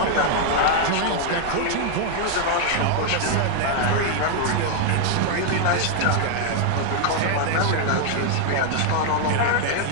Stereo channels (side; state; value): both; different; correlation 0.00